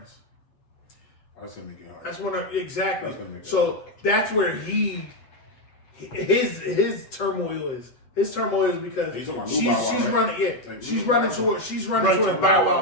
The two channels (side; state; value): right; late; 8.0 ms